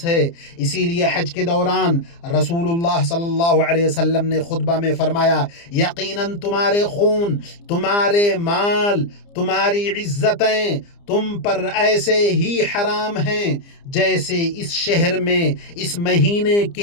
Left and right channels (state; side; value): late; right; 29 ms